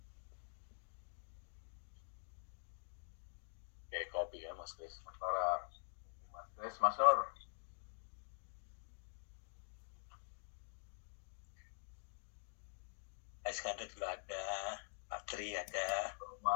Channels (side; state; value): right; silent; digital silence